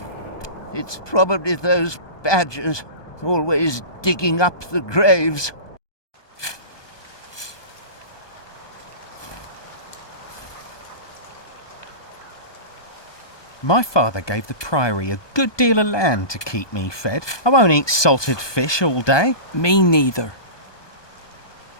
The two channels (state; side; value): late; right; 1.2 ms